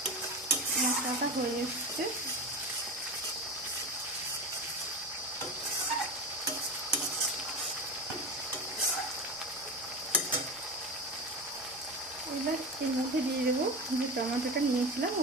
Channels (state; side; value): normal; both; correlation 0.25